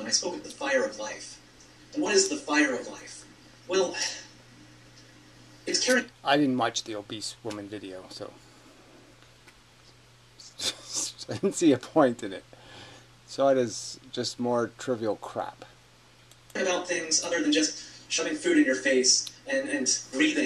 I spoke of the fire of life. And what is the fire of life? Well, It's caring. I didn't watch the obese woman video, so I didn't see a point in it. So it is just more trivial crap. About things other than just shoving food in your face and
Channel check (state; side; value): identical; both; correlation 1.00